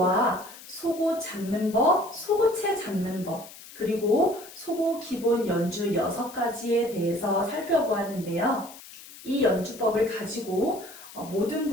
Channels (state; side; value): noise; left; hiss, 17 dB below the sound